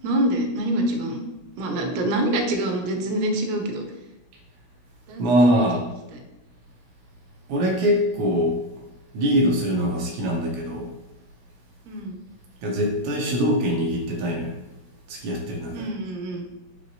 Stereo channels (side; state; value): left; late; 16 ms